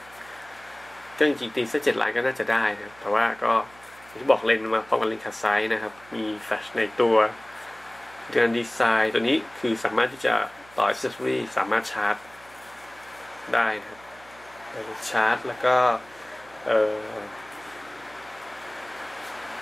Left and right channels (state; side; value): noise; right; hum, 25 dB below the sound